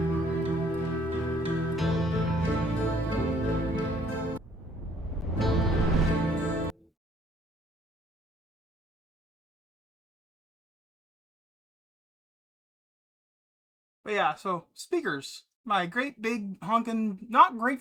But yeah, so speakers. My great big honking, not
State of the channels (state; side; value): normal; both; correlation 0.75